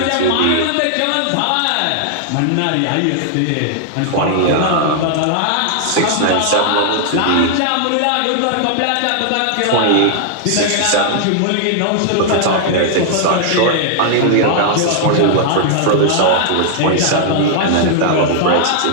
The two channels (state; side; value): different; both; correlation -0.01